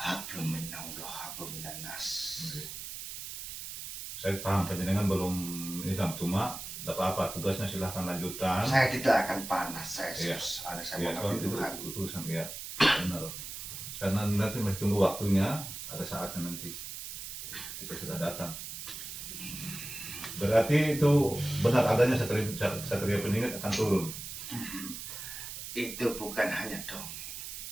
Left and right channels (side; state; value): right; noise; hiss, 8 dB below the sound